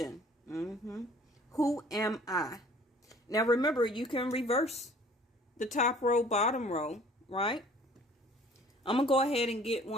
Who am I? Now remember, you can reverse the top row, bottom row, right? I'm going to go ahead and get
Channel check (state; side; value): normal; both; correlation 0.52